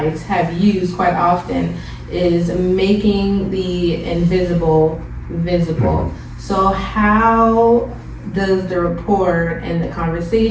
have used quite often, is making the invisible visible. So how does the report and the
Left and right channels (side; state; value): both; identical; correlation 1.00